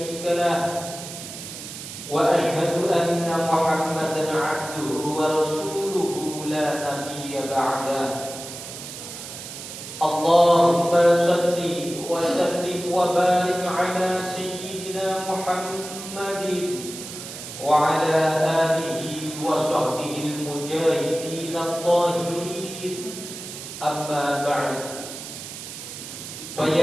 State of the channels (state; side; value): noise; right; hiss, 10 dB below the sound